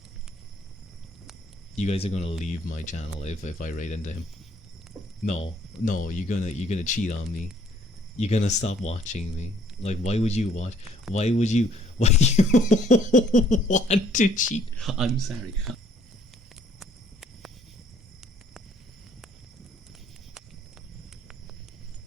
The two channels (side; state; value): both; normal; correlation 0.61